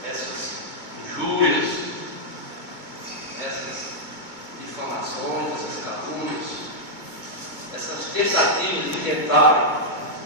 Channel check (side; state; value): left; late; 2.2 ms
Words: essas injúrias, essas difamações, essas calúnias, essas tentativas de tentarem